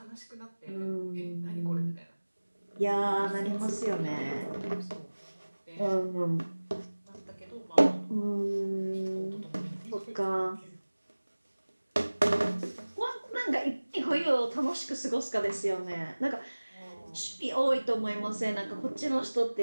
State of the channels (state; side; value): inverted; both; correlation -1.00